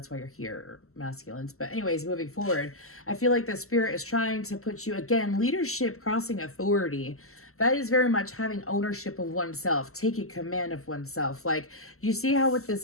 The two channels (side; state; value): right; late; 0.63 ms